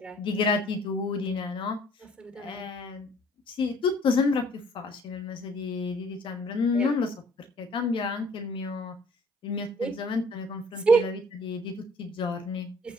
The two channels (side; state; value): both; normal; correlation 0.56